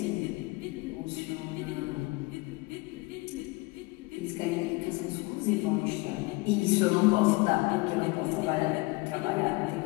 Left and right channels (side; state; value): right; quieter; 24.4 dB